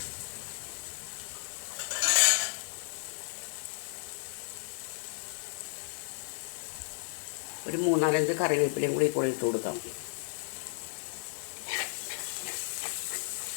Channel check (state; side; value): silent; right; 55 dB below the other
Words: ഒരു 3-4 കറിവേപ്പിലയും കൂടി ഇപ്പോൾ ഇട്ട് കൊടുക്കാം.